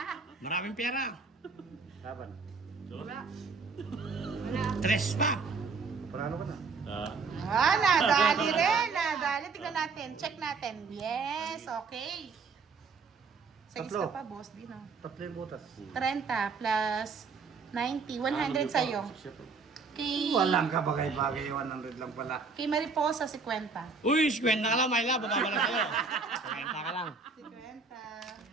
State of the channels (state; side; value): quieter; left; 4.7 dB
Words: Maraming pera! Laban. Wala. Tres pa! Parano ka na? Nadali rin, nadali. Tignan natin, check natin. Yes, okay. Sa Tatlo. isa pa, boss, di no? 3 yung butas. 30 plus 90, 100 sa'yo. Kay, Walang kabagay-bagay, 100 lang pala. kay Mariposa, 50. Uy, 50 ka lang, my love! Bababa lang sa'yo. 50 ka lang. 50.